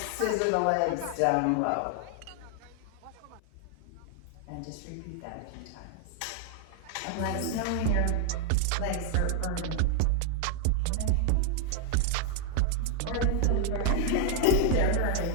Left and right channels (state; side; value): different; both; correlation 0.00